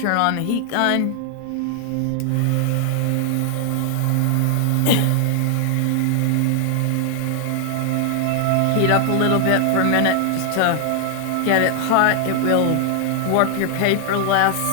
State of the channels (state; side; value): different; both; correlation 0.00